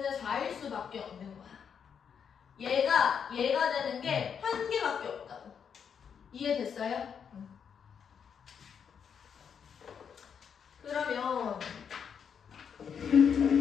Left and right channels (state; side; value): quieter; right; 7.3 dB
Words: 4일 수밖에 없는 거야. 얘가 되는 게 한 개밖에 없다고. 이해됐어요? 그러면